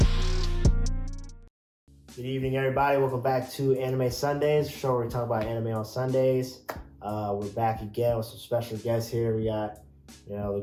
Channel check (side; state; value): both; identical; correlation 1.00